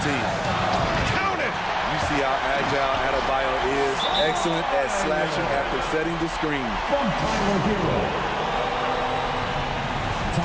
team. Count it! You see see how agile Adebayo is. Excellent at slashing after setting the screen. From Tyler Hero.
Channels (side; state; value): both; identical; correlation 1.00